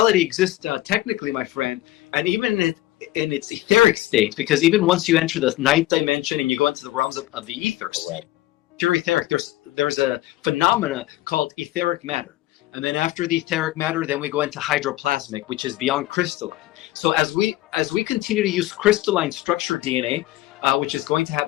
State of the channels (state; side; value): quieter; right; 16.5 dB